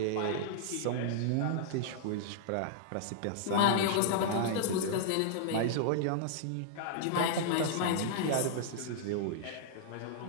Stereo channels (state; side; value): different; both; correlation -0.01